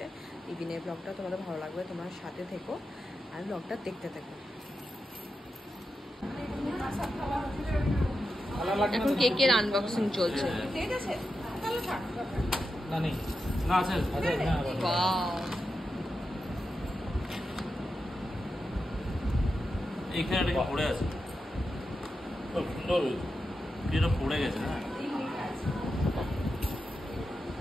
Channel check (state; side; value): normal; both; correlation 0.89